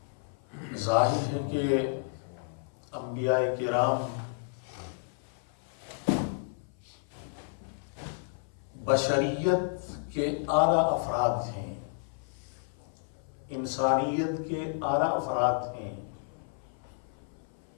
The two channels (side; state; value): right; silent; 56 dB below the other